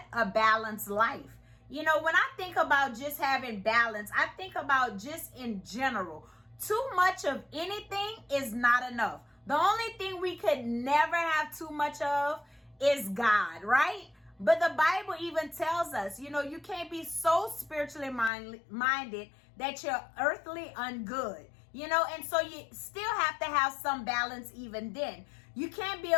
a balanced life. You know, when I think about just having balance, I think about just in general. Too much of anything is not enough. The only thing we could never have too much of is God, right? But the Bible even tells us, you know, you can't be so spiritually minded that you're earthly ungood. You know, and so you still have to have some balance even then. You can't be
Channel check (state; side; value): drops out; right; at 18.3 s